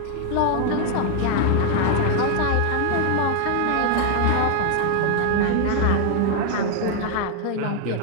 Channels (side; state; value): both; different; correlation 0.00